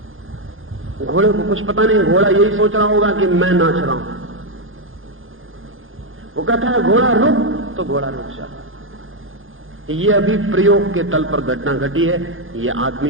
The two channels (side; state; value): left; late; 0.59 ms